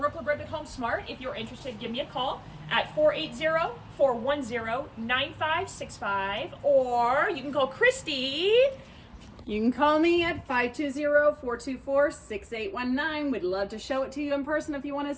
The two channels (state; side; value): identical; both; correlation 1.00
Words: LaBrake with HomeSmart. If you're interested, give me a call at 480-410-9565. Or you can call Kristie. You can call me at 520-424-6819. We'd love to show it to you in person if you want to